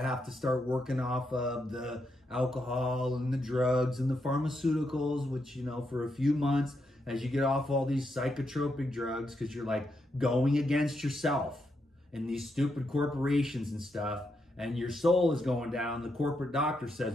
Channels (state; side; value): normal; both; correlation 0.81